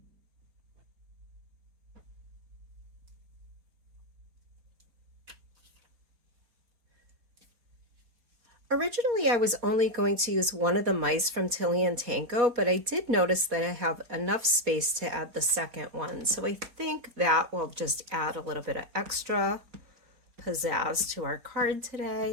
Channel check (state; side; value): late; left; 4.2 ms